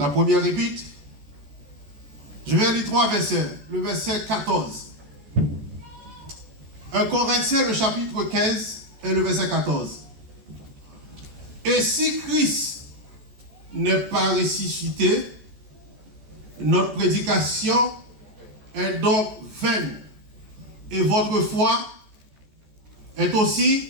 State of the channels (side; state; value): left; late; 14 ms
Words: première épître, je vais lire 3 versets, le verset 14. 1 Corinthiens, le chapitre 15 et le verset 14. Et si Christ n'est pas ressuscité, notre prédication est donc vaine. Et votre foi est aussi...